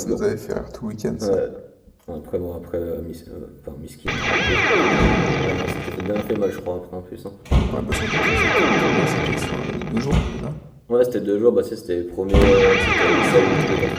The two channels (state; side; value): identical; both; correlation 1.00